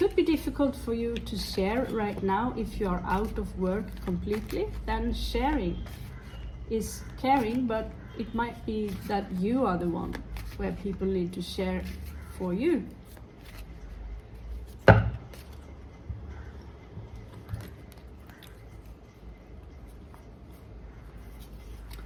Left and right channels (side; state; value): both; identical; correlation 1.00